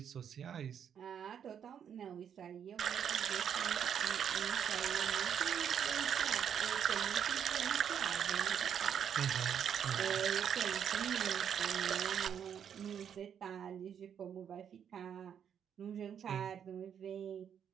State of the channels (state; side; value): quieter; left; 8.4 dB